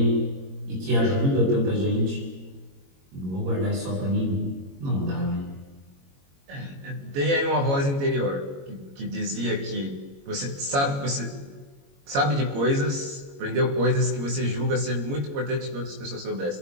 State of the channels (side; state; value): left; late; 22 ms